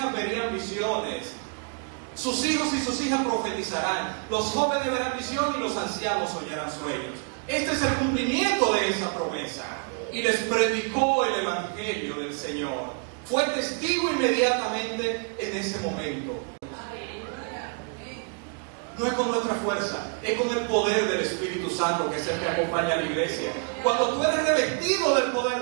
verían visiones. Sus hijos y sus hijas profetizarán, los jóvenes verán visión y los ancianos soñarán sueños. Este es el cumplimiento de esa promesa. Y les predicó el evangelio del Señor. Fue testigo inmediatamente en ese momento. No es con nuestra fuerza, es con el poder del Espíritu Santo, que es el que acompaña a la iglesia. Cuando tú eres revestido del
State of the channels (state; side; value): quieter; left; 37.7 dB